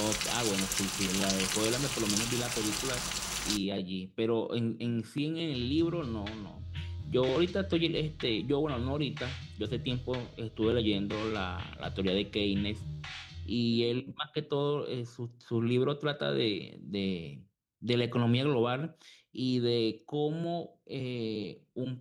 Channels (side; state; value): both; identical; correlation 1.00